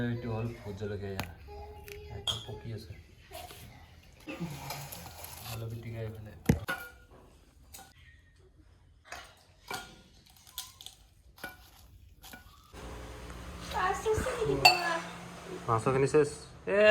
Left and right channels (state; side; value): identical; both; correlation 1.00